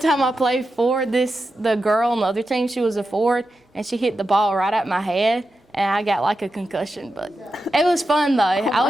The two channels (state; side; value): normal; both; correlation 0.90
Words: I played forward, the girl on the other team, she was a forward, and she hit the ball right at my head, and I got like a concussion. But it was fun, though. I